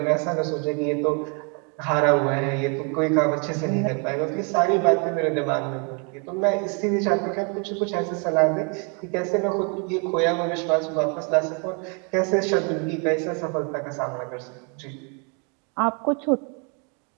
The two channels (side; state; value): left; quieter; 36.3 dB